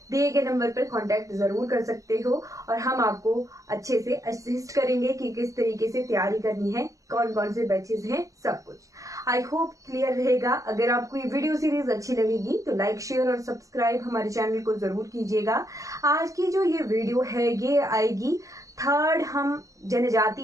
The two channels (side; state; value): left; late; 0.16 ms